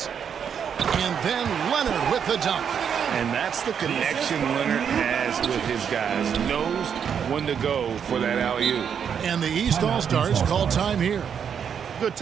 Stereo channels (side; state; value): left; quieter; 7.6 dB